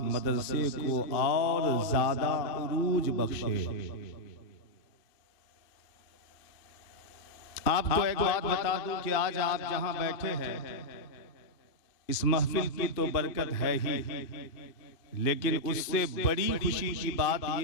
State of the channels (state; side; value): late; right; 2.4 ms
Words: मदरसे को और ज़्यादा उरूज बख्शे। आपको एक बात बता दूं कि आज आप जहां बैठे हैं, इस महफिल की तो बरकत है ही, लेकिन उससे बड़ी खुशी की बात